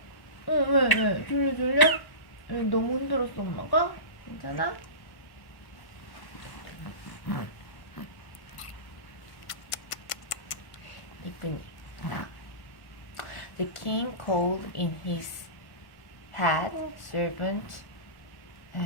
왜? 졸려? 너무 힘들었어 엄마가? 괜찮아? 이쁜이. The king called in his head servant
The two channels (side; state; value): right; late; 1.1 ms